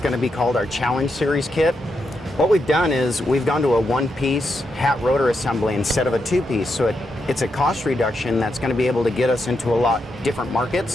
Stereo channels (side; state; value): both; normal; correlation 0.83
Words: going to be called our Challenge Series kit. What we've done is we've gone to a one-piece hat rotor assembly instead of a two-piece, so it's a cost reduction that's going to be able to get us into a lot different